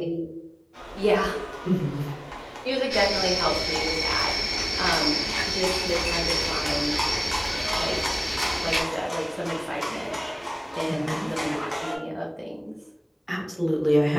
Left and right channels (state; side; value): identical; both; correlation 1.00